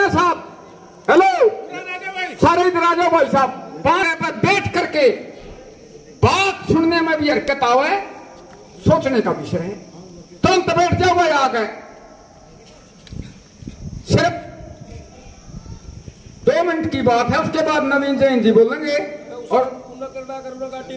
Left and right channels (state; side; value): identical; both; correlation 1.00